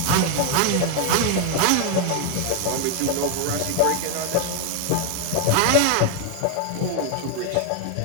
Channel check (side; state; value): both; different; correlation 0.01